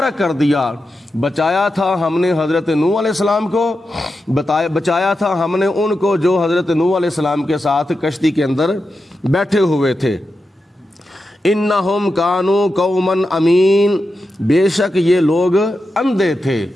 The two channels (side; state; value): both; normal; correlation 0.89